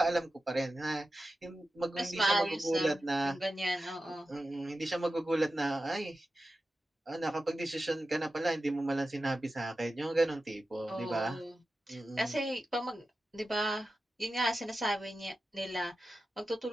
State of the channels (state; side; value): normal; both; correlation 0.93